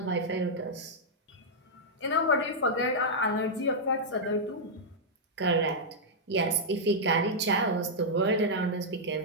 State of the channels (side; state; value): both; normal; correlation -0.06